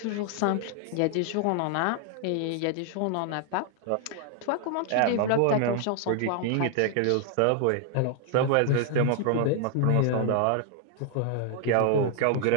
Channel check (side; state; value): both; different; correlation 0.00